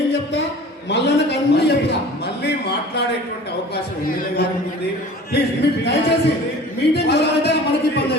చెప్తా, మల్లన్నకు అన్ని చెప్తా. మళ్ళీ మాట్లాడేటువంటి అవకాశం ఉంది. ప్లీజ్ మీరు దయచేసి మీటింగ్ అయితే మనకి ఇబ్బంది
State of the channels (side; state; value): both; normal; correlation 0.43